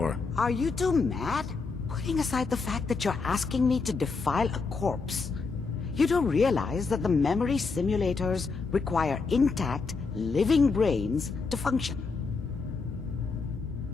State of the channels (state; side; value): quieter; right; 4.5 dB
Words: Are you two mad? Putting aside the fact that you're asking me to defile a corpse, you don't realize that the memory simulators require intact, living brains to function.